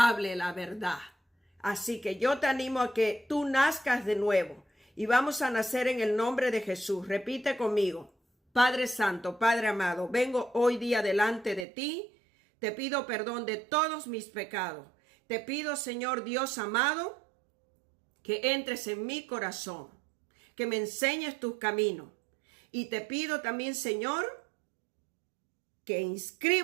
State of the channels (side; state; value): left; drops out; at 11.7 s